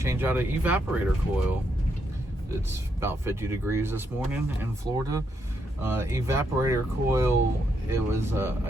out an evaporator coil. It's about 50 degrees this morning in Florida. Evaporator coil, it was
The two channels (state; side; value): normal; both; correlation 0.78